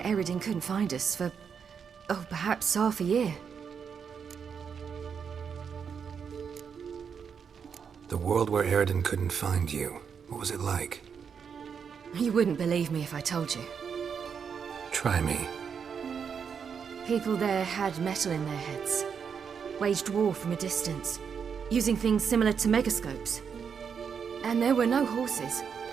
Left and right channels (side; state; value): left; quieter; 6.8 dB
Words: Eredin couldn't find us for, oh, perhaps half a year. The world where Eredin couldn't find you. What was it like? You wouldn't believe me if I told you. Try me. People there had metal in their heads. Waged war from a distance, using things similar to megascopes. And there were no horses.